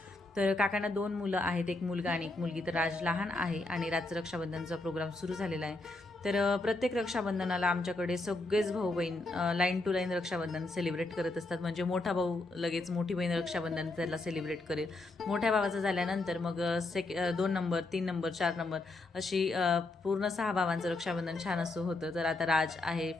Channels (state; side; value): quieter; right; 3.0 dB